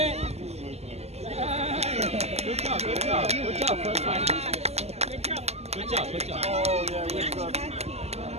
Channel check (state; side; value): late; left; 0.30 ms